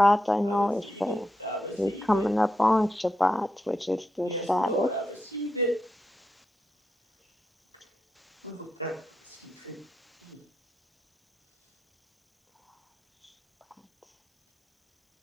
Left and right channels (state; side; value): normal; both; correlation 0.86